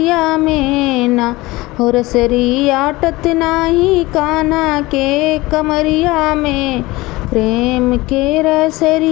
में ना। हो रसरी आटत नाही कान्हा के कमरिया में, प्रेम के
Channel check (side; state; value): right; quieter; 20.6 dB